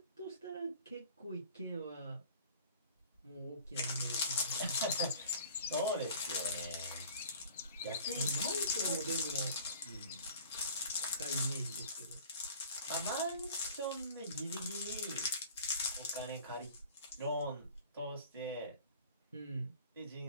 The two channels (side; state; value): both; inverted; correlation -0.46